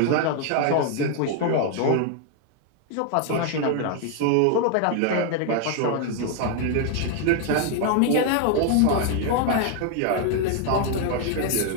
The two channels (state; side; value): different; both; correlation 0.00